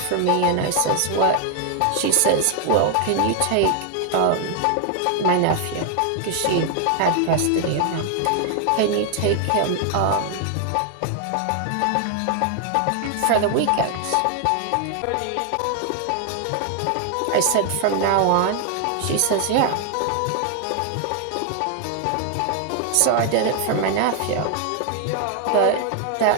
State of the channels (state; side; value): different; both; correlation 0.00